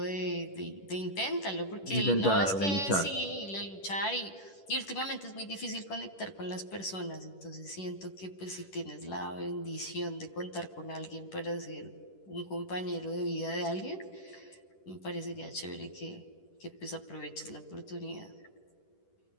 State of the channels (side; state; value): right; late; 10 ms